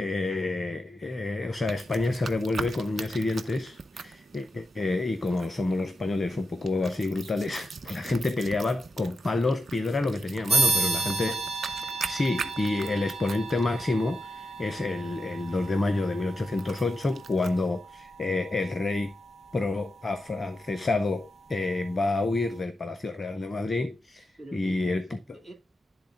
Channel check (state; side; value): normal; both; correlation 0.88